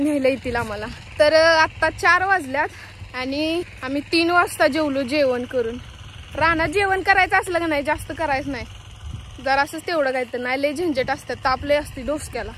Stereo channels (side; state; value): both; identical; correlation 1.00